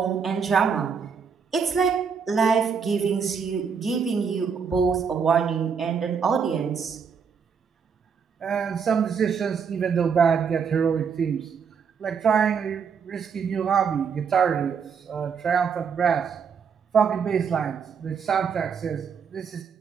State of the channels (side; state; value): left; quieter; 6.4 dB